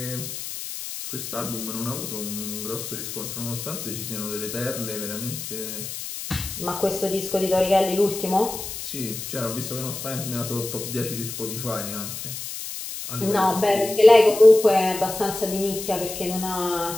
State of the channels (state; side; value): noise; left; hiss, 8 dB below the sound